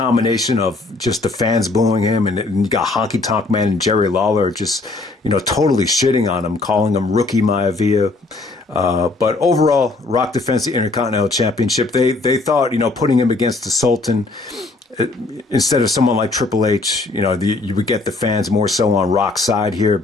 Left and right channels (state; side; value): quieter; right; 3.3 dB